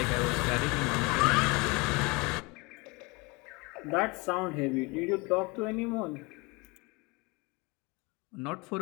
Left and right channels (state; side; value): quieter; right; 26.8 dB